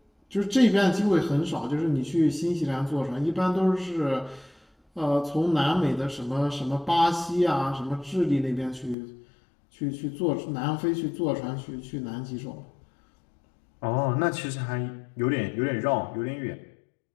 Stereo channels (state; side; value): drops out; right; at 9.0 s